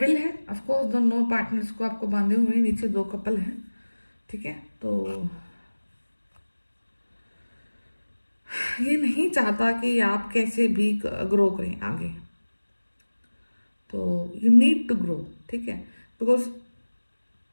है ऑफकोर्स, दोनों पार्टनर्स को आपको बांधे हुए, नीचे 2 कपल हैं, ठीक है। तो ये नहीं चाहता कि आप कैसे भी ग्रो करें आगे, तो यू नीड टू ग्रो, ठीक है, बिकॉज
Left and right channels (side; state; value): both; inverted; correlation -1.00